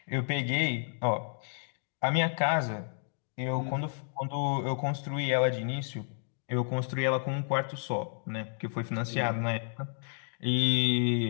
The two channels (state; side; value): silent; right; digital silence